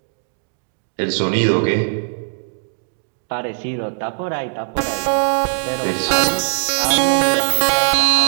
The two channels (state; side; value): silent; left; digital silence